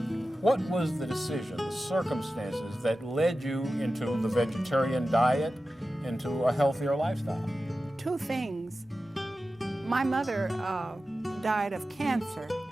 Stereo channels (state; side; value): normal; both; correlation 0.94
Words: what was the decision, the circumstances that led you into the vegetarian diet, into a healthier lifestyle? Two things. My mother died of cancer,